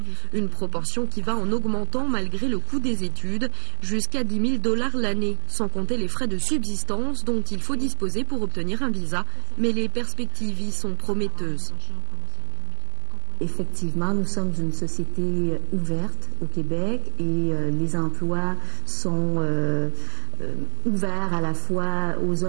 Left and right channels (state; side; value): silent; left; digital silence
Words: Une proportion qui va en augmentant malgré le coût des études, jusqu'à 10 000 $ l'année, sans compter les frais de subsistance dont il faut disposer pour obtenir un visa. Mais les perspectives y sont prometteuses. Effectivement, nous sommes une société ouverte au Québec et les emplois sont ouverts à la fois aux